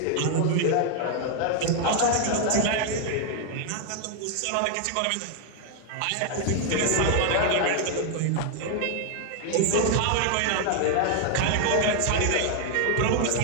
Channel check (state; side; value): different; both; correlation 0.00